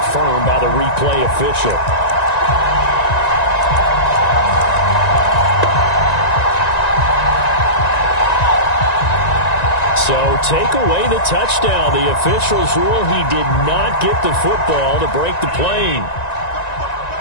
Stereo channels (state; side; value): late; right; 1.9 ms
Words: by the replay official. So take away the touchdown. The officials rule he did not get the football to break the plane.